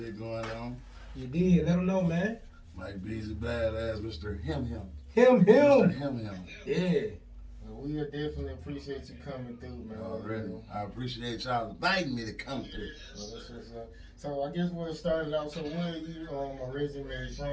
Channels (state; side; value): identical; both; correlation 1.00